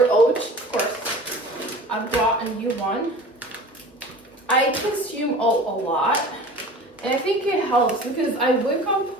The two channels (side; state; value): both; normal; correlation 0.40